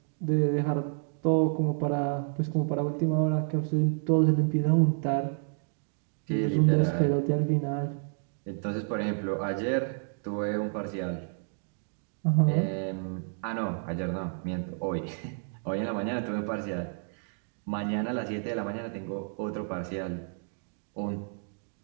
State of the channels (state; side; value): silent; left; 58 dB below the other